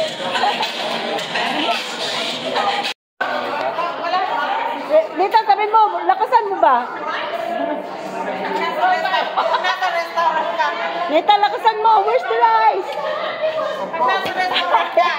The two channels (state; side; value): identical; both; correlation 1.00